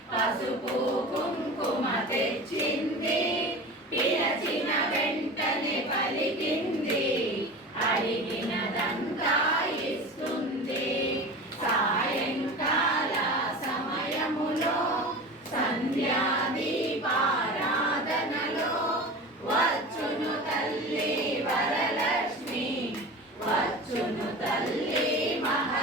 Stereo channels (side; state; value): both; normal; correlation 0.33